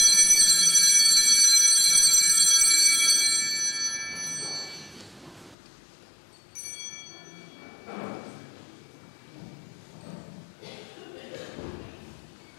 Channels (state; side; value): drops out; right; at 5.6 s